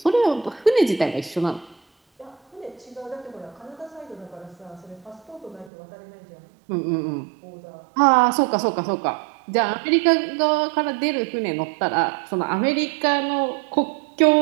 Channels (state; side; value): drops out; left; at 5.7 s